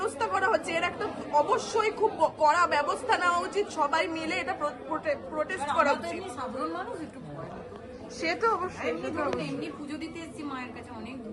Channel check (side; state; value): both; identical; correlation 1.00